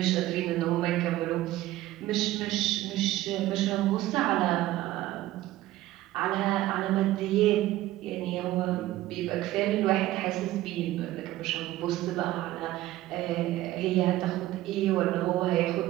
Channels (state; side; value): quieter; left; 15.7 dB